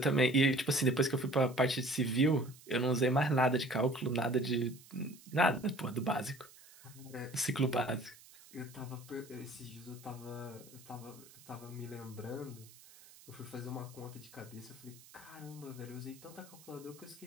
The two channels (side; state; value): right; noise; hiss, 22 dB below the sound